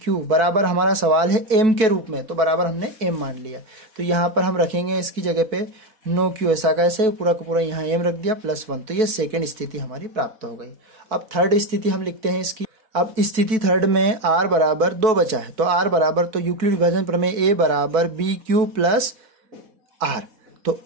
बराबर, हमारा सवाल है m के रूप में, तो बराबर हमने m मान लिया, तो यहाँ पर हम रखेंगे इसकी जगह पे 9 क्यू ऐसा कैसे, पूरा का पूरा यहाँ m रख दिया प्लस 1, तो ये सेकेंड स्थिति हमारी प्राप्त हो गई। अब थर्ड स्थिति हम लिखते हैं इसकी। अब स्थिति थर्ड में r बराबर 2 बचा है, तो r बराबर, तो यूक्लिड विभाजन प्रमेय a बराबर बी क्यू प्लस r, तो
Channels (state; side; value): late; left; 4.6 ms